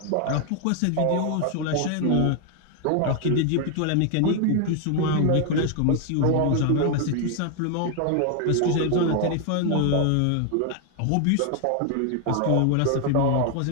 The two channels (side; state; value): both; different; correlation 0.01